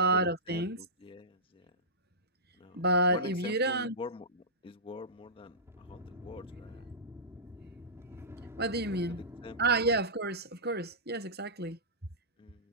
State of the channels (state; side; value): normal; both; correlation -0.18